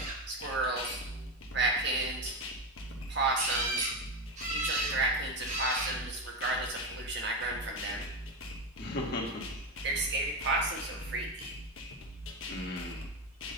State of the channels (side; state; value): both; normal; correlation 0.14